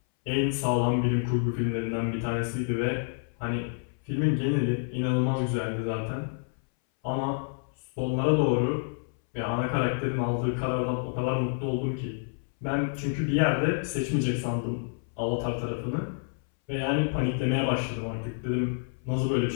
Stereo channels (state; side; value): silent; right; 59 dB below the other